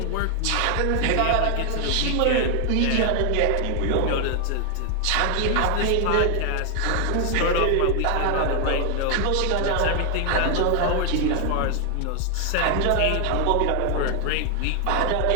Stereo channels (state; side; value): different; both; correlation 0.00